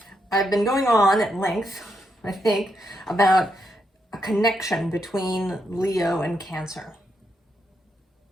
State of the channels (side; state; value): both; normal; correlation 0.80